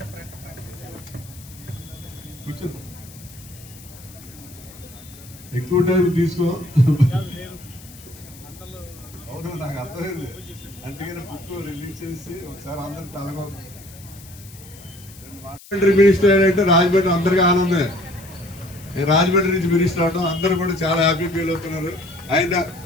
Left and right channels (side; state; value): left; noise; hiss, 20 dB below the sound